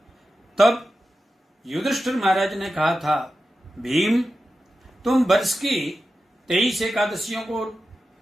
तब युधिष्ठिर महाराज ने कहा था, भीम, तुम वर्ष की 23 एकादशियों को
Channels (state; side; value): normal; both; correlation 0.92